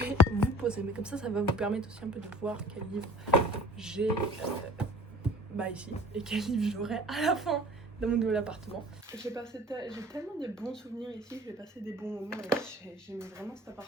vous poser, mais comme ça va vous permettre aussi un peu de voir quel livre j'ai ici et quel livre j'aurai à la fin dans mon nouvel appartement. J'ai tellement de bons souvenirs ici, j'ai passé des bons moments et j'aimais vraiment cet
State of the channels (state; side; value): normal; both; correlation 0.47